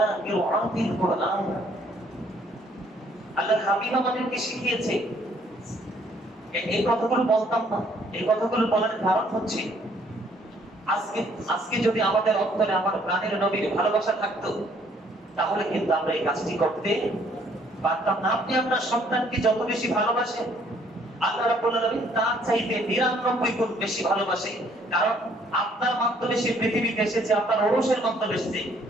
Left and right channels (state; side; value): normal; both; correlation 0.63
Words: قراءة القرآن। আল্লাহর হাবিব আমাদেরকে শিখিয়েছে। এই কথাগুলো বলতাম না, এই কথাগুলো বলার কারণ হচ্ছে আজকে যদি আমাদের অন্তরে আমার প্রাণের নবীর ভালোবাসা থাকতো, তাহলে কিন্তু আমরা এই কাজটি করতে পারতাম না। আপনি আপনার সন্তানকে যত বেশি ভালোবাসেন, আল্লাহ রাব্বুল আলামিন তার চাইতে 99 গুণ বেশি ভালোবাসে। কারণ আপনার মাধ্যমে সে পৃথিবীতে এসেছে, আপনার ঔরসের মাধ্যমে এসেছে,